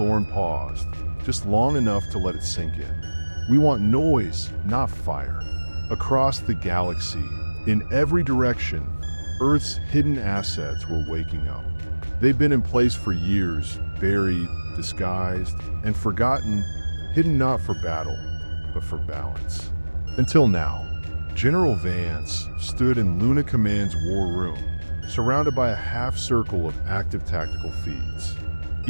paused, just long enough to let it sink in. "We want noise, not fire." Across the galaxy, in every direction, Earth's hidden assets were waking up. They'd been in place for years, buried, disguised, and forgotten, hidden not for battle, but for balance. Until now, General Vance stood in Luna Command's war room, surrounded by a half-circle of active tactical feeds.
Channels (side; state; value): both; inverted; correlation -1.00